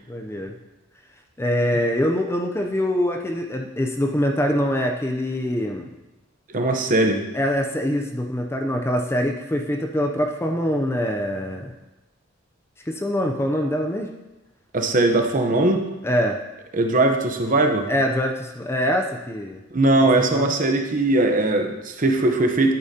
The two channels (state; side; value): normal; both; correlation 0.49